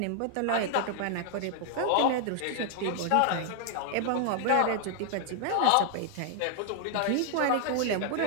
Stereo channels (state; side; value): different; both; correlation 0.00